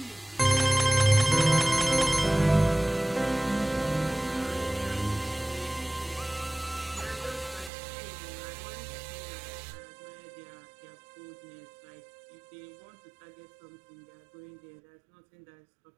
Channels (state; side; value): drops out; left; at 7.7 s